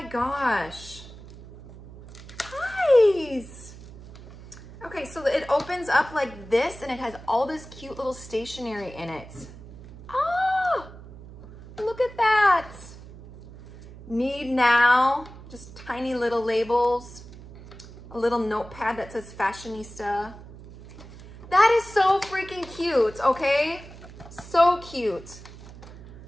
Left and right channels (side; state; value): right; noise; hum, 17 dB below the sound